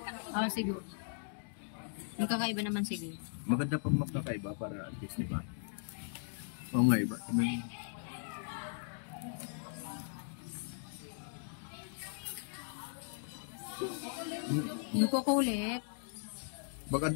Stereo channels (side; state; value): right; silent; digital silence